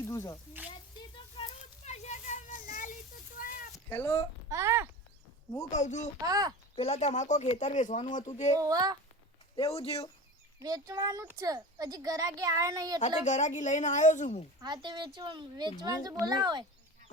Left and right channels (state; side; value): normal; both; correlation 0.32